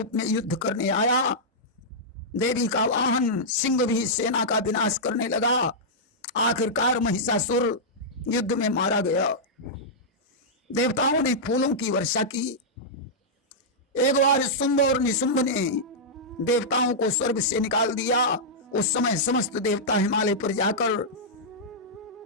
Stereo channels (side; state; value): both; normal; correlation -0.10